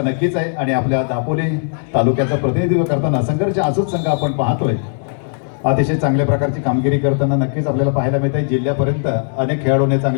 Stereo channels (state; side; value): silent; right; 68 dB below the other